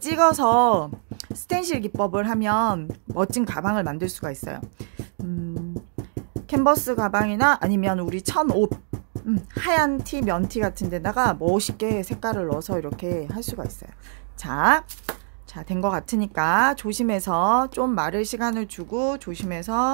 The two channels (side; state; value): left; silent; digital silence